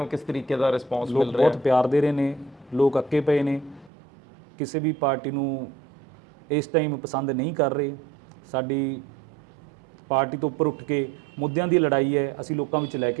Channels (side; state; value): left; drops out; at 3.9 s